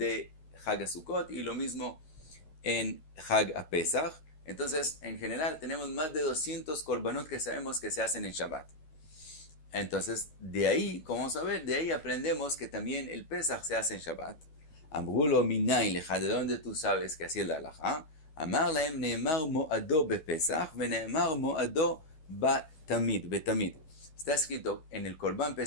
Hag Sukkot, y lo mismo en Hag Pesach. Entonces, en general, tenemos más de 200 korbanot que sabemos que se hacen en Shabbat. Entonces, de ahí, como vamos a ver, de ahí aprendemos que también el Pesach se hace en Shabbat. Amrulo minayin lecha, ¿de dónde tú sabes que así es la halajá? Amar lahem neemar mo'ado bepesach, veneemar mo'ado betamid. Está escrito en el Korban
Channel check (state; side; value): late; right; 12 ms